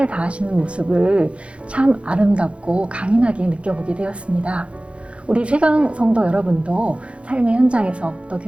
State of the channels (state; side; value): late; left; 0.060 ms